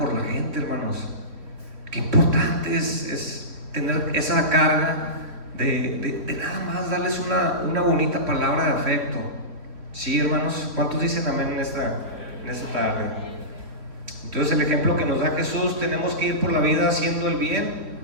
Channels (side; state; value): left; late; 4.3 ms